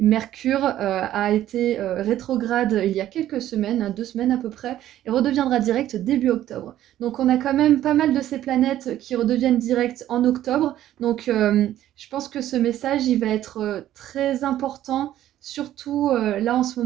Mercure a été rétrograde il y a quelques semaines, hein, 2 semaines à peu près, et redeviendra direct début octobre. Donc on a quand même pas mal de ces planètes qui redeviennent directes en octobre. Donc je pense que ce message il va être très important, surtout là en ce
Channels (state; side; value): quieter; left; 12.8 dB